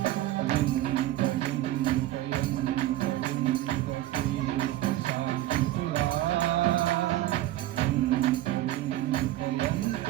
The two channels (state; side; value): quieter; left; 14.8 dB